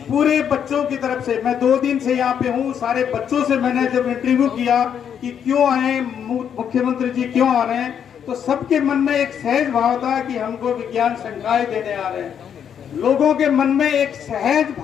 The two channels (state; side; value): quieter; right; 8.3 dB